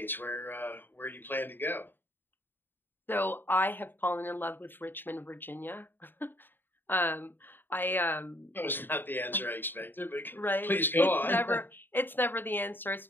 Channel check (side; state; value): right; late; 0.095 ms